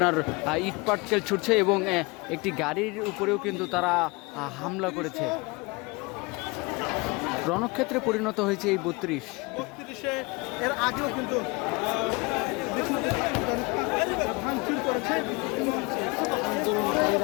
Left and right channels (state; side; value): quieter; right; 26.5 dB